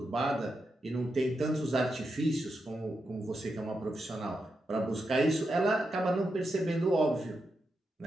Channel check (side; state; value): both; normal; correlation 0.86